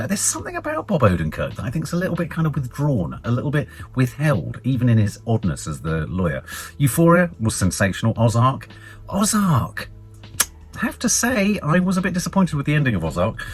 There's something about Bob Odenkirk that I think is a little bit kind of withdrawn, a little bit withheld, even in his oddness as the lawyer. Euphoria was sensational. Ozark. I have to say, I was a bit disappointed with the ending of Ozark.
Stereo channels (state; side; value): identical; both; correlation 1.00